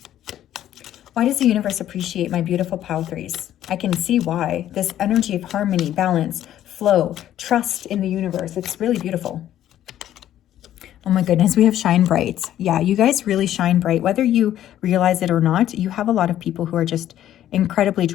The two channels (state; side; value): quieter; right; 11.9 dB